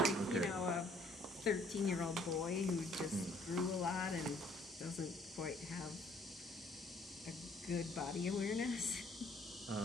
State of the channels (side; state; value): both; normal; correlation 0.62